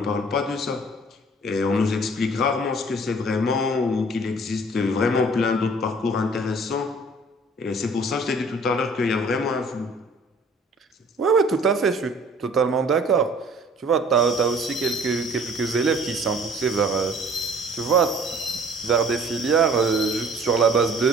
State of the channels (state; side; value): normal; both; correlation 0.53